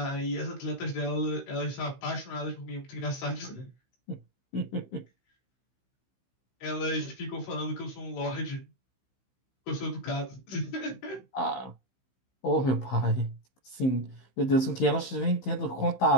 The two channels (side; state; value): right; late; 15 ms